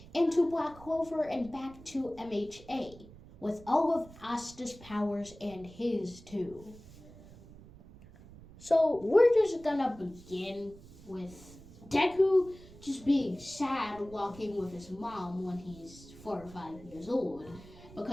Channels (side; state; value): right; noise; rumble, 19 dB below the sound